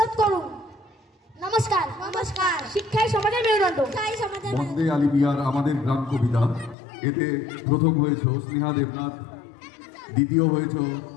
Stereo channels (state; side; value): drops out; right; at 6.8 s